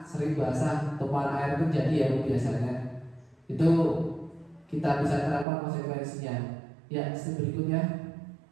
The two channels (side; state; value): left; drops out; at 5.5 s